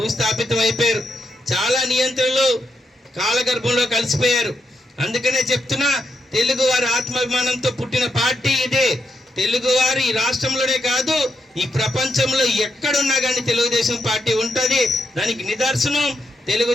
అయిపోయారు. చాలా నియంత్రణలు కాలగర్భంలో కలిసిపోయారు. అందుకనే చెప్తున్నా, తెలుగు వారి ఆత్మాభిమానంతో పుట్టిన పార్టీ ఇదే. తెలుగువారు ఈ రాష్ట్రంలోనే కాదు ఈ ప్రపంచంలో ఎక్కడున్నా కానీ తెలుగుదేశం పార్టీ ఉంటుంది. దానికి నిదర్శనం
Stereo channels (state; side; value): normal; both; correlation 0.82